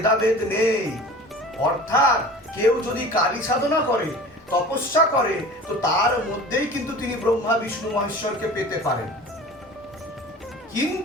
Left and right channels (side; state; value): both; normal; correlation 0.40